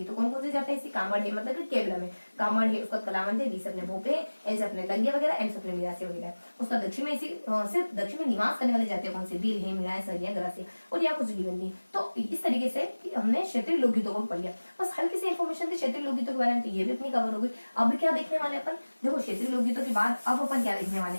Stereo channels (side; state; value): both; inverted; correlation -1.00